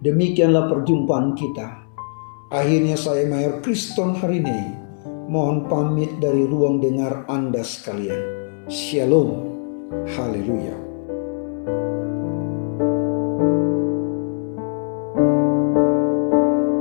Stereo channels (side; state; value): right; silent; 65 dB below the other